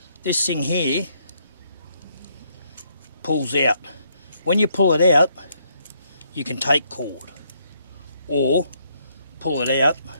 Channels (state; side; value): inverted; both; correlation -0.72